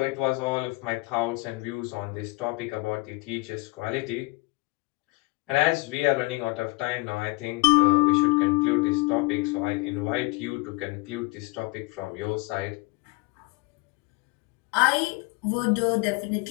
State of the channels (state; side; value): quieter; right; 25.9 dB